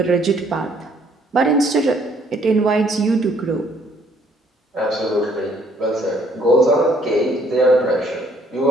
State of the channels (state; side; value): normal; both; correlation 0.64